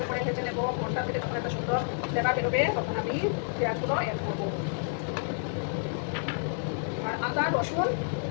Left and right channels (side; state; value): right; silent; 58 dB below the other